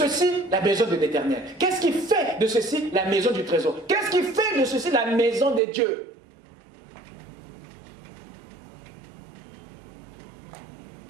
la maison de l'Éternel. Qu'est-ce qui fait de ceci la maison du trésor? Qu'est-ce qui fait de ceci la maison de Dieu?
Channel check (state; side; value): drops out; left; at 5.6 s